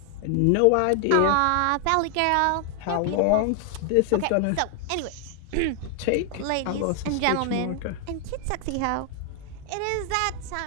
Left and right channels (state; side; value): different; both; correlation 0.00